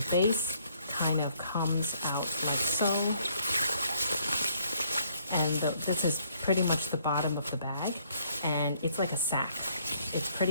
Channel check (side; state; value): both; inverted; correlation -0.66